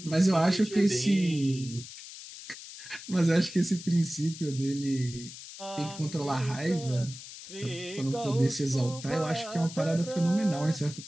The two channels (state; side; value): noise; left; hiss, 14 dB below the sound